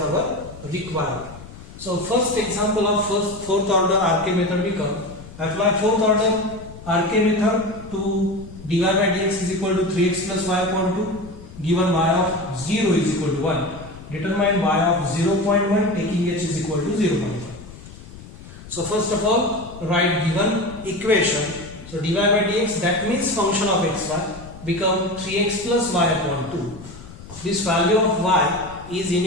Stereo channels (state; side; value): noise; left; rumble, 16 dB below the sound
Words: requirement. So first example of fourth order RK method become apply fourth order RK method to dy by dx is equal to 3x plus y upon 2 given y of 0 is equal to 1. Determine y of 0.1 taking h is equal to 0.1. So first of all write given equation. So dy by dx, that means function of xy, become 3x plus y upon 2. This value of y is